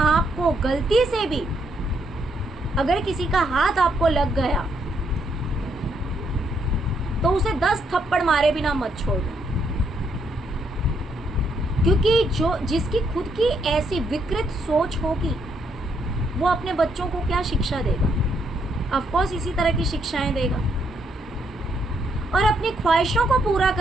गलती से भी, अगर किसी का हाथ आपको लग गया तो उसे 10 थप्पड़ मारे बिना मत छोड़ो, क्योंकि जिसकी खुद की ऐसी विकृत सोच होगी वो अपने बच्चों को क्या शिक्षा देगा? ऑफ कोर्स इसी तरह की शिक्षाएं देगा। और अपनी ख्वाहिशों को पूरा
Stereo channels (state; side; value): normal; both; correlation 0.74